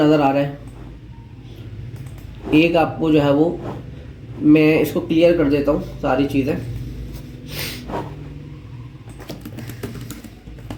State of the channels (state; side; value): identical; both; correlation 1.00